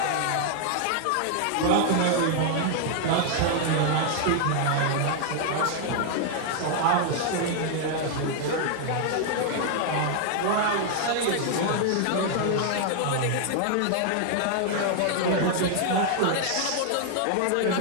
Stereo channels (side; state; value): both; different; correlation 0.00